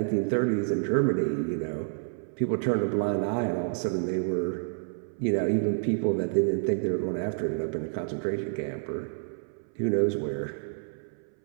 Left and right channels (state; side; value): silent; left; 59 dB below the other